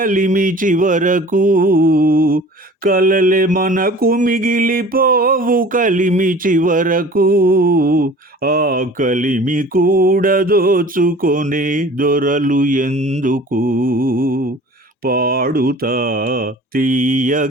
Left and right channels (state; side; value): normal; both; correlation 0.44